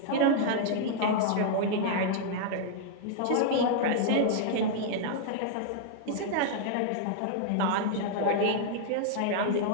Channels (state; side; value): different; both; correlation -0.01